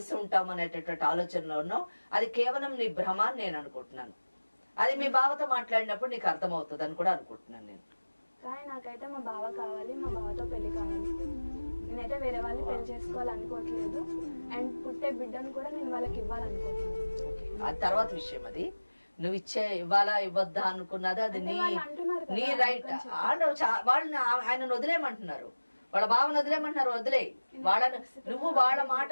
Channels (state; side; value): inverted; both; correlation -1.00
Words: ఉంటాం అనేటటువంటి ఆలోచనలో ఉన్నావు. అది కేవలం నీ భ్రమ అని నేను అనుకుంటున్నాను. అది మీ బావతో మాట్లాడినప్పుడు నీకు అర్థమవుతుంది అని కూడా అనుకుంటున్నాను నేను. కానీ నాకైతే మా బావ కావాలి, మా బావతో పెళ్లి కావాలి. నేనైతే వేరే వాళ్ళని పెళ్లి చేసుకోవాలనుకోవట్లేదు. అండ్ పుట్టే బిడ్డను కూడా నేను వాళ్ళకి ఇవ్వాలనుకోవట్లేదు. అది తర్వాత విషయం. అది నువ్వు ఇవ్వాలా ఇవ్వద్దా అనుకున్నది అది నీ రైట్. వాళ్ళని ఆయనను వదిలేయమంటున్నారు, వాళ్ళ బావను వదిలేయమంటున్నారు. వదిలే వాళ్ళని. నువ్వు వాళ్ళ